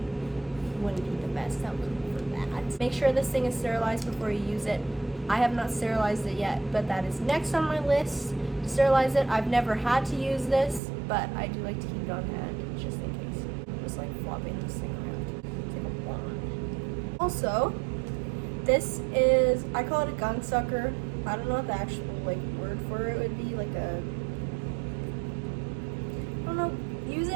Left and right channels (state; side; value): drops out; left; at 10.8 s